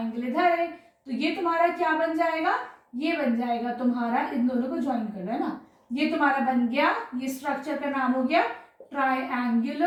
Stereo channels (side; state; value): both; identical; correlation 1.00